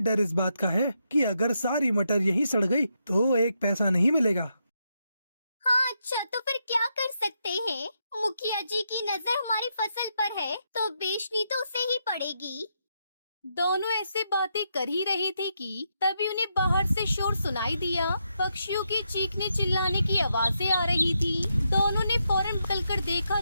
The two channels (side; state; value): both; inverted; correlation -0.81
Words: इस बात का है कि अगर सारी मटर यहीं सड़ गई तो 1 पैसा नहीं मिलेगा। हाँ अच्छा, तो फिर क्या कर सकते हैं? मुखिया जी की नजर हमारी फसल पर है तो बेचनी तो उसे ही पड़ेगी। दोनों ऐसे बातें कर ही रहे थे कि तभी उन्हें बाहर से शोर सुनाई दिया। पक्षियों की चीखने चिल्लाने की आवाजें आ रही थी। दोनों ने फौरन निकलकर देखा